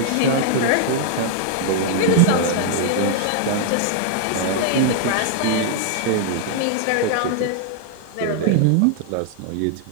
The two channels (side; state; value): both; different; correlation 0.00